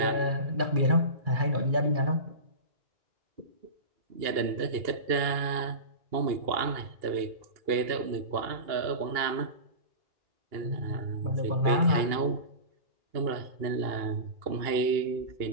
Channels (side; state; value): left; late; 2.8 ms